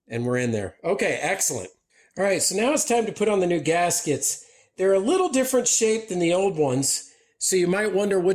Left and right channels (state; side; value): identical; both; correlation 1.00